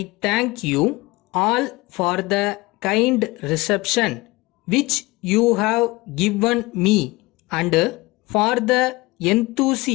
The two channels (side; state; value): right; quieter; 21.6 dB